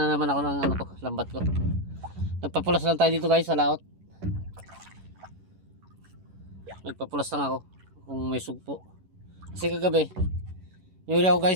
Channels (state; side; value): late; left; 11 ms